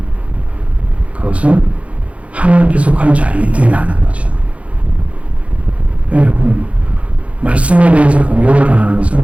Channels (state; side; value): late; left; 0.063 ms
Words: 그것은 하나님께 속한 자이기 때문에 맞는 거죠. 여러분 말씀에 대해서 공격을 당하는